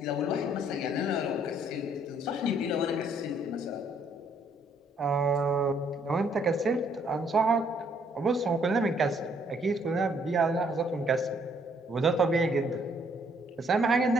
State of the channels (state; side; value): normal; both; correlation 0.66